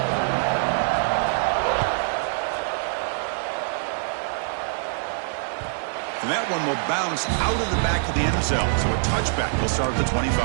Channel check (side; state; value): left; silent; digital silence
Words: And that one will bounce out of the back of the end zone. So a touchback will start at the